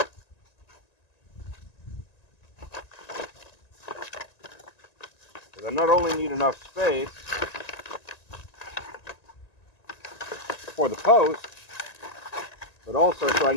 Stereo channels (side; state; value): right; late; 1.9 ms